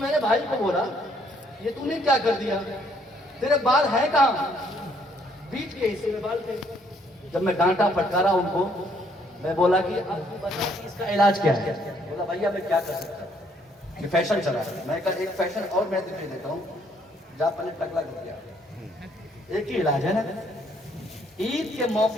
भाई को बोला, ये तूने क्या कर दिया, तेरे बाल है कहाँ? बीच के हिस्से में बाल थे। जब मैं डांटा फटकारा उनको, मैं बोला कि अब तू बता कि इसका इलाज क्या है। बोला भैया मैं क्या कर सकता हूँ, ये फैशन चला है। मैं कहा एक फैशन और मैं दिखाई देता हूँ, जा पहले टकला कर दिया। एक ही इलाज है ना, ईद के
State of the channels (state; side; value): normal; both; correlation 0.67